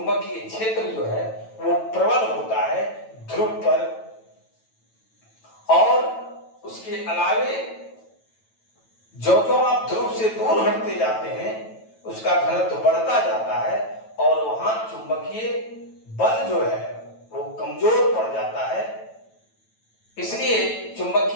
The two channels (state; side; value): late; right; 9.1 ms